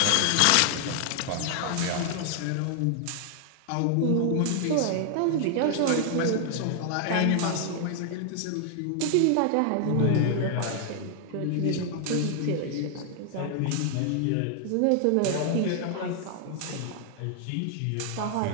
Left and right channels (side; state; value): both; different; correlation 0.00